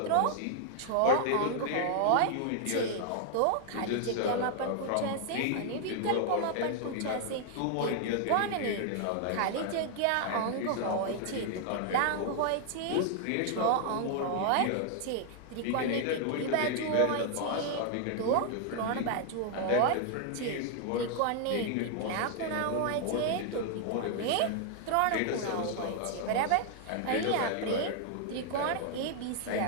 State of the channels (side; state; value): both; different; correlation 0.00